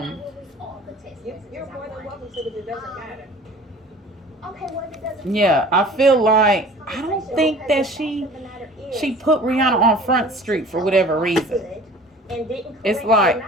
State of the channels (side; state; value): both; normal; correlation 0.45